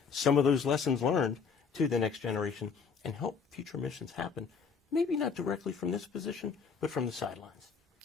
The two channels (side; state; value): right; quieter; 5.8 dB